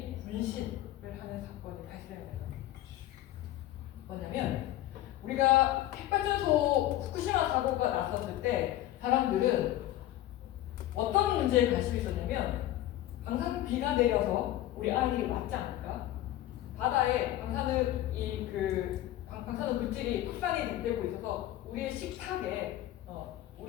분신을 하는 사건이 발생해요. 뭐냐면 우리가 핵발전소 후쿠시마 사고가 났었을 때 사람들은 어떤 문제에 관심이 있었냐면 방사선비가 내려서 우리 아이들이 맞지 않을까? 바다에 방사능 방사능 물질이 확산이 되고 있어서 우리의 식탁에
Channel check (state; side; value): quieter; right; 14.3 dB